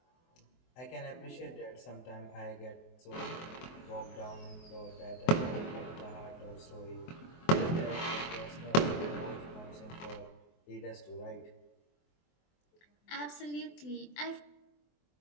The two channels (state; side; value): late; right; 24 ms